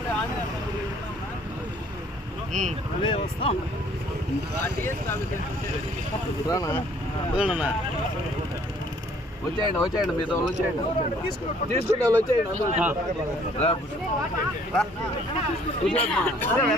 వస్తాం వచ్చేయండి మీతో వచ్చేయండి తీసుకుంటే వచ్చేయండి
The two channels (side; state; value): both; normal; correlation 0.59